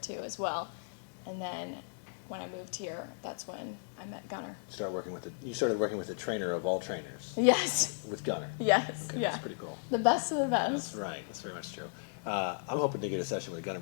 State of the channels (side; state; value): right; silent; digital silence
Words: as well. And then when I moved here, that's when I met Gunnar. You started working with the trainer of all trainers. Yes. With Gunnar. Yes. Okay, yeah. That's pretty cool. The best of the That's best. right. That's very much true. I'm hoping to get a session with Gunnar